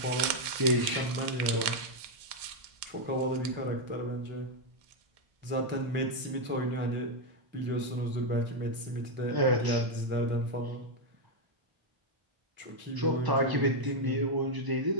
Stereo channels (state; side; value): late; left; 1.0 ms